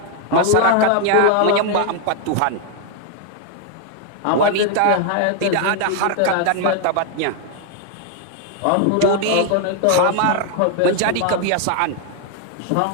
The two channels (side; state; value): both; different; correlation 0.00